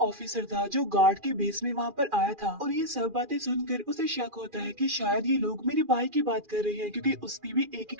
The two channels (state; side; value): late; left; 2.4 ms